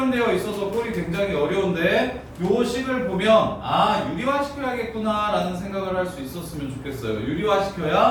있어서 꼴이 굉장히 어려운데 요 식을 보면 아, 유리화 시켜야겠구나 라는 생각을 할 수 있었으면 좋겠어요. 유리화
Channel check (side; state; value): both; identical; correlation 1.00